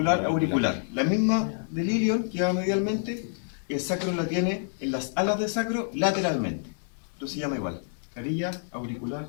auricular. La misma del ilion que va medialmente, el sacro la tiene en las alas del sacro lateralmente. Esto se llama igual. Carilla auricular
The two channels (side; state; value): right; silent; digital silence